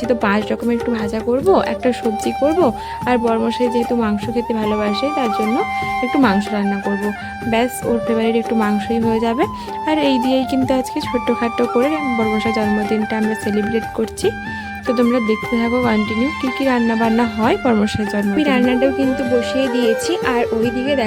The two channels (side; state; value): both; identical; correlation 1.00